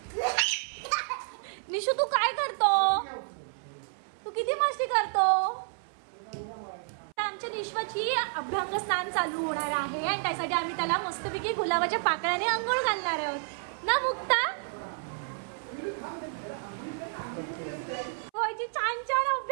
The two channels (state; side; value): silent; left; 58 dB below the other